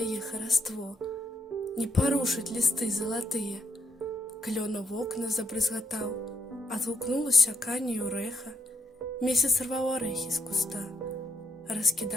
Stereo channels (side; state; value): both; normal; correlation 0.77